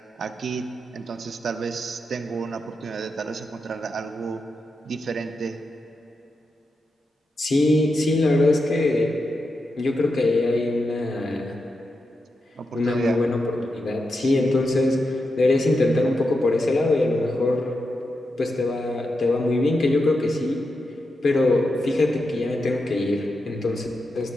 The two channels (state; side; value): normal; both; correlation 0.87